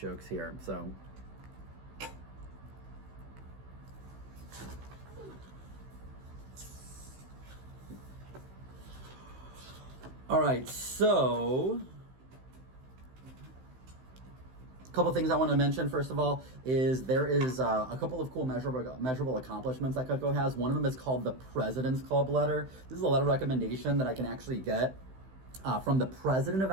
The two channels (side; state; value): left; late; 16 ms